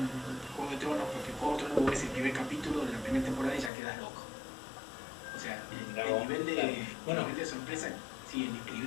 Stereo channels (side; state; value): right; drops out; at 3.7 s